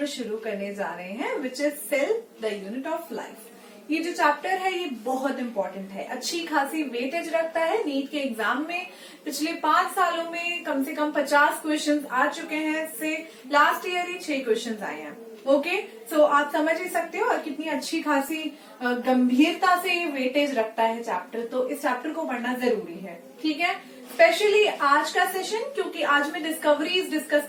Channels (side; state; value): both; identical; correlation 1.00